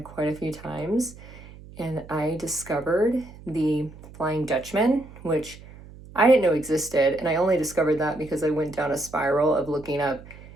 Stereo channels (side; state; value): right; noise; hum, 18 dB below the sound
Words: quite a few times. And I discovered the Flying Dutchman, which I didn't know existed. And I only discovered that because I went down a spiral of looking up